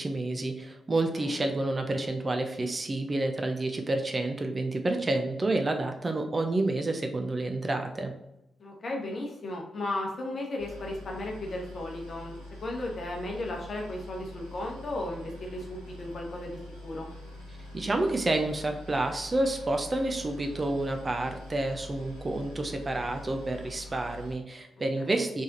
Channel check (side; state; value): both; normal; correlation 0.90